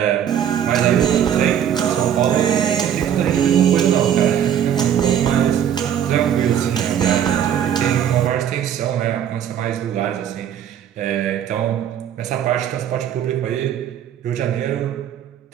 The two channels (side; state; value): left; quieter; 9.5 dB